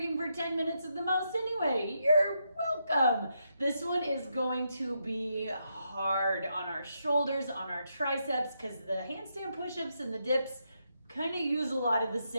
for 10 minutes at the most anyway. You're welcome. This one is going to be hard on our shoulders, on our triceps, because the handstand push-ups and the dips kind of use a lot of the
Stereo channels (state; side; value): inverted; both; correlation -0.81